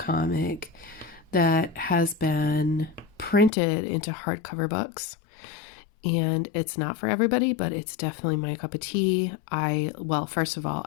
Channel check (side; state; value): right; drops out; at 3.5 s